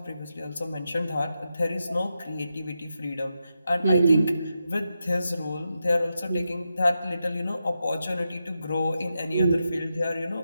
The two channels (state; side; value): inverted; both; correlation -0.87